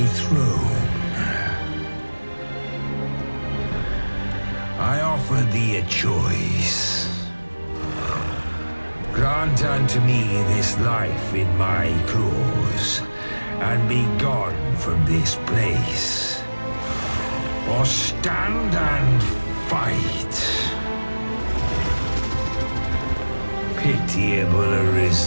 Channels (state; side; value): inverted; both; correlation -1.00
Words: throne? I offer thee a choice. Grant unto me this life in my claws, and be gone from this place. Or stand and fight. Pitiable